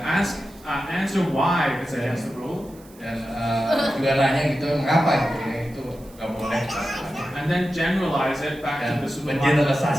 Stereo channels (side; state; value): right; noise; hiss, 25 dB below the sound